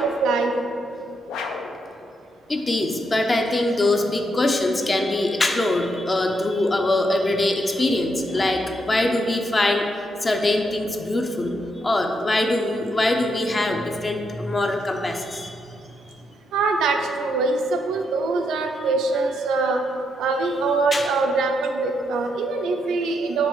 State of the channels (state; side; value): normal; both; correlation 0.79